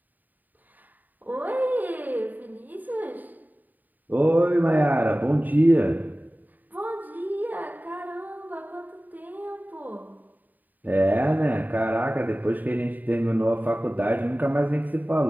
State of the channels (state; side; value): late; left; 0.086 ms